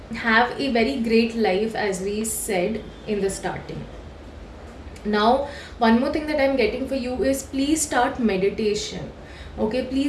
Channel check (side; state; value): both; identical; correlation 1.00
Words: have a very great life as we said in the starting. Now one more thing that I am getting for you is please start meditation. Okay,